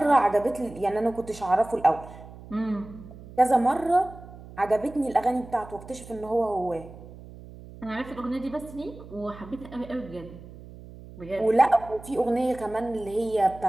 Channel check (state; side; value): noise; right; hum, 17 dB below the sound